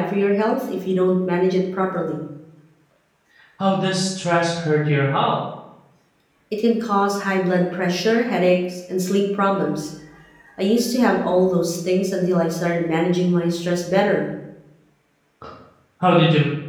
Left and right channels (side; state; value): both; identical; correlation 1.00